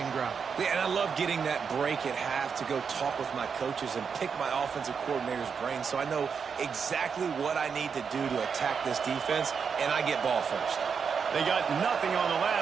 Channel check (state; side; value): quieter; left; 6.2 dB